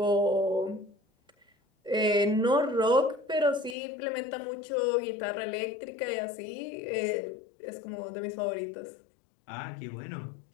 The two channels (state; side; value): drops out; right; at 3.8 s